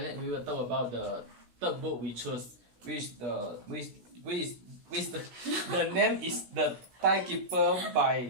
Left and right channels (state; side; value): late; left; 16 ms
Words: we will talk about the third book we chose, which the name is The Timekeeper